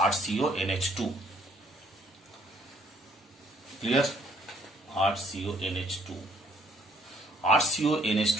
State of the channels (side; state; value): both; normal; correlation 0.64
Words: RCONH2, clear? RCONH2